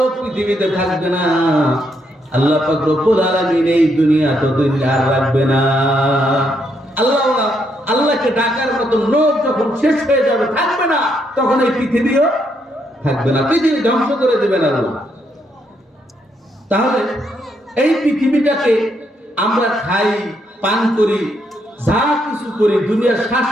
পৃথিবীতে থাকবে না, আল্লাহ পাক রব্বুল আলামিন এই দুনিয়া ততদিন আর রাখবে না। আল্লাহওয়ালা, আল্লাহকে ডাকার মতো লোক যখন শেষ হয়ে যাবে, থাকবে না, তখন এই পৃথিবীও থাকবে না, পৃথিবী ধ্বংস করে দেবেন আল্লাহ। তাহলে এই পৃথিবীটাকে আমরা খাই, পান করি, যা কিছু করি, দুনিয়ার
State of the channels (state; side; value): normal; both; correlation 0.76